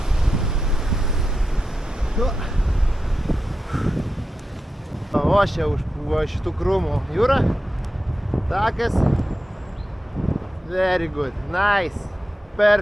Ošia už šitų krūmų jūra. Takas. Very good. Nice.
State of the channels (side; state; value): both; normal; correlation 0.90